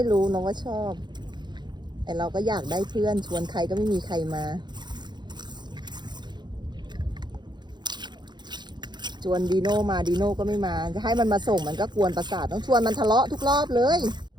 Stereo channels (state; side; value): late; left; 0.21 ms